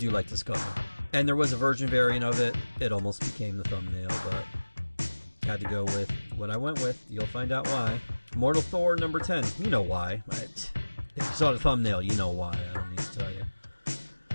like this cover. And there was a virgin variant of it. It almost became the thumbnail, but had to go with what I went with. You'll find out why. Mortal Thor #10. You know why. If you saw the thumbnail, you know why. I don't need to tell you.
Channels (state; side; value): inverted; both; correlation -1.00